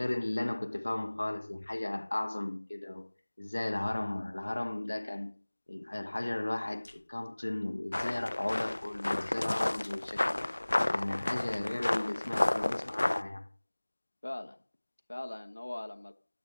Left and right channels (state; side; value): inverted; both; correlation -1.00